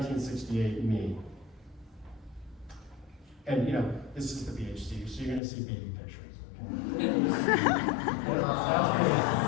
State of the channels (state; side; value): drops out; right; at 5.4 s